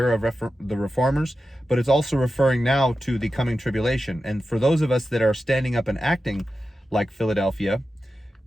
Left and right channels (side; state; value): both; normal; correlation 0.92